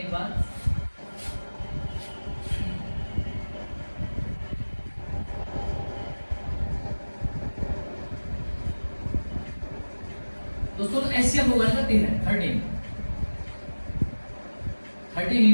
बार। दोस्तों तो एचसीएफ होगा इनका 13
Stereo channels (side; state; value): both; inverted; correlation -1.00